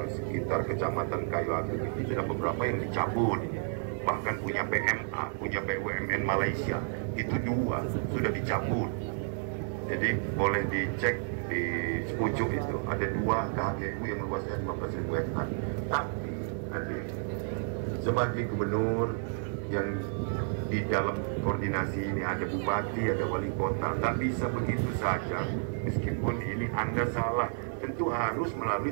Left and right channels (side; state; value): left; silent; 57 dB below the other